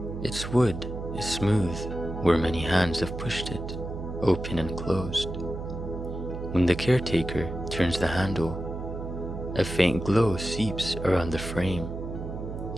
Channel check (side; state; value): right; noise; hum, 7 dB below the sound